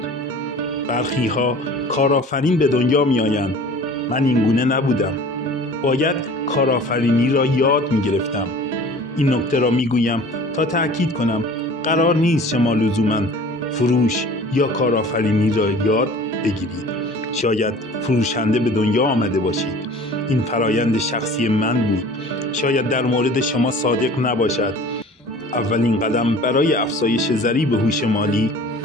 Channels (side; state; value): both; normal; correlation 0.44